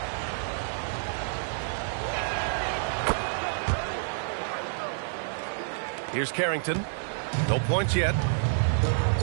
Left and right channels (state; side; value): silent; left; digital silence